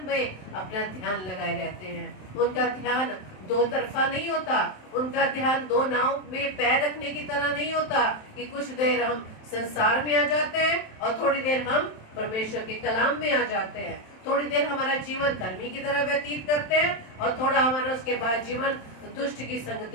में अपना ध्यान लगाए रहते हैं। उनका ध्यान दो तरफा नहीं होता, उनका ध्यान 2 नाव में पैर रखने की तरह नहीं होता कि कुछ देर हम संसार में आ जाते हैं और थोड़ी देर हम परमेश्वर के कलाम में आ जाते हैं, थोड़ी देर हमारा जीवन धर्मी की तरह व्यतीत करते हैं और थोड़ा हमारा उसके बाद जीवन दुष्ट की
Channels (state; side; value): late; right; 27 ms